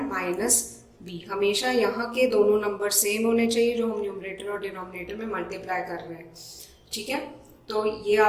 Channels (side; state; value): both; identical; correlation 1.00